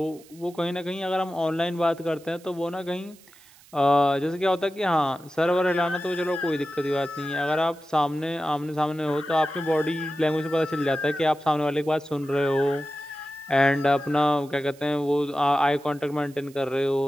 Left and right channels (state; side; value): noise; right; hiss, 25 dB below the sound